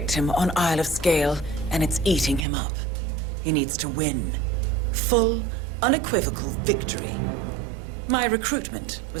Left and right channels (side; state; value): left; drops out; at 2.5 s